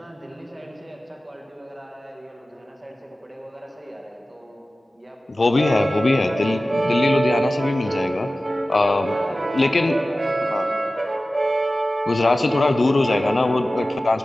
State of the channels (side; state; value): both; normal; correlation 0.96